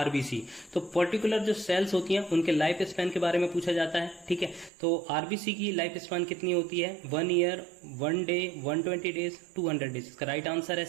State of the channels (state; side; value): drops out; left; at 4.7 s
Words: तो पर्टिकुलर जो सेल्स होती हैं उनके लाइफ स्पैन के बारे में पूछा जाता है, ठीक है। तो आरबीसी की लाइफ स्पान कितनी होती है? 1 ईयर, 1 डे, 120 डेज, 200 डेज। इसका राइट आंसर है